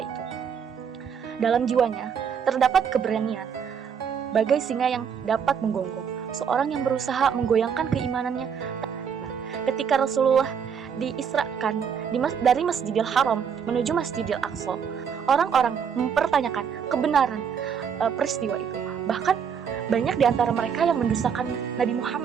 itu. Dalam jiwanya, terdapat keberanian, bagai singa yang dapat menggonggong, seorang yang berusaha menggoyangkan keimanannya. Ketika Rasulullah diisrakan dari Masjidil Haram menuju Masjidil Aqsa, orang-orang mempertanyakan kebenaran peristiwa itu. Bahkan banyak di antara mereka yang mendustakan Nabi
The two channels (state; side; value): quieter; left; 7.2 dB